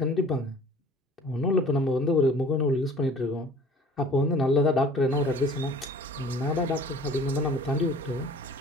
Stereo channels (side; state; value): both; normal; correlation 0.48